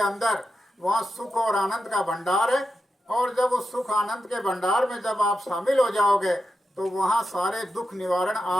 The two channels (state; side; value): normal; both; correlation 0.88